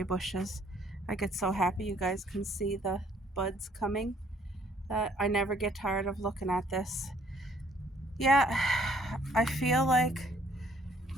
bushes. I get so happy you guys can see the buds coming that I never get tired of looking at this. Yeah, I feel like,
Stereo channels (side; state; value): both; normal; correlation 0.63